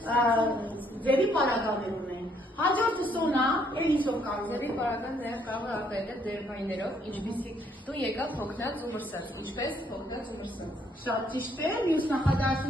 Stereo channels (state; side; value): normal; both; correlation 0.69